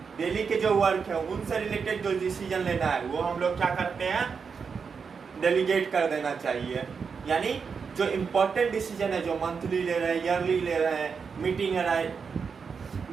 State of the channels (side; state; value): left; quieter; 5.8 dB